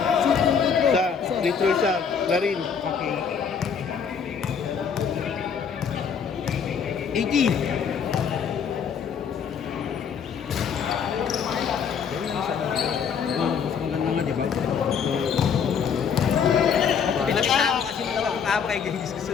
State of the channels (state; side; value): quieter; right; 6.8 dB